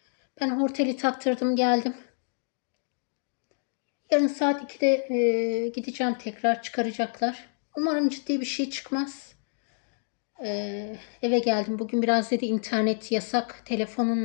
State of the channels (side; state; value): right; silent; digital silence